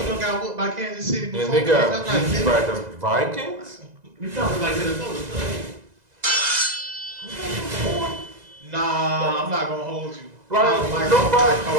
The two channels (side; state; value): left; late; 2.0 ms